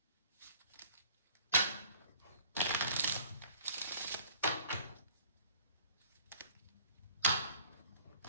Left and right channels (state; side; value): inverted; both; correlation -0.54